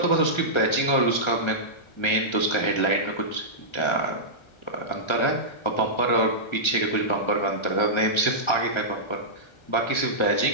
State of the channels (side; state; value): right; late; 1.3 ms